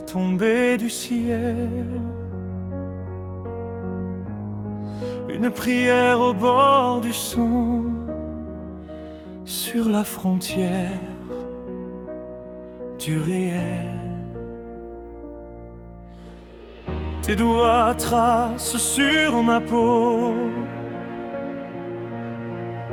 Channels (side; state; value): both; identical; correlation 1.00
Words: tombé du ciel, une prière au bord du son, sur la frontière du réel. Tes doigts tracent sur ma peau